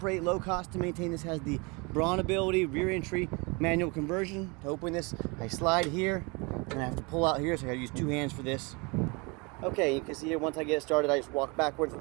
low cost to maintain. This has the brawn ability, rear entry manual conversion. To open this, I slide here and I have to pull out here, so I gotta use two hands for this. Okay, you can see here, once I get it started, I just walk backwards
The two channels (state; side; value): quieter; left; 29.0 dB